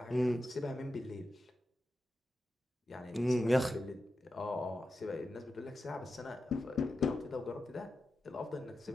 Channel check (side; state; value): both; normal; correlation 0.91